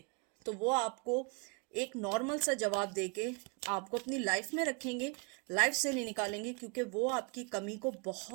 तो वो आपको एक नॉर्मल सा जवाब देके आपको अपनी लाइफ में रखेंगे, लाइफ से नहीं निकालेंगे, क्योंकि वो आपकी कमी को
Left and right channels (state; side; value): quieter; left; 32.8 dB